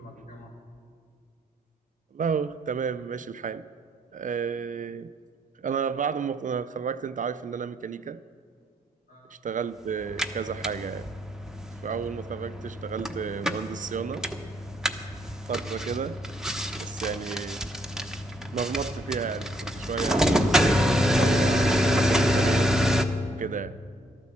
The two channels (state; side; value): normal; both; correlation 0.70